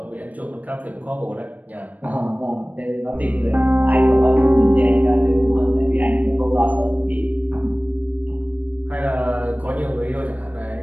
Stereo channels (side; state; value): left; late; 0.075 ms